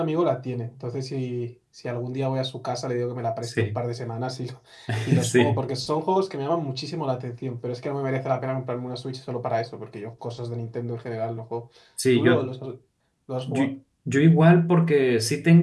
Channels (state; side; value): identical; both; correlation 1.00